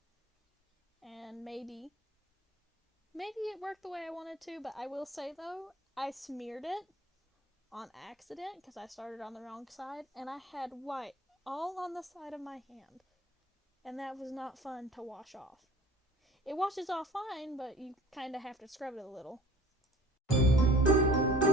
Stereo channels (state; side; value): normal; both; correlation 0.46